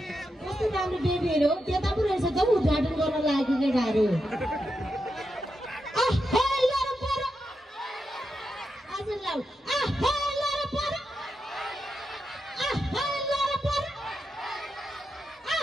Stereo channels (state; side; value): normal; both; correlation 0.86